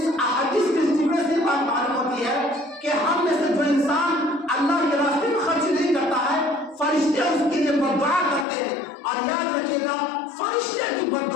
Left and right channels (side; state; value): right; drops out; at 8.5 s